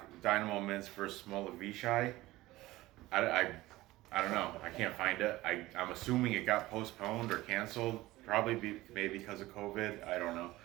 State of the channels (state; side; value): quieter; left; 18.0 dB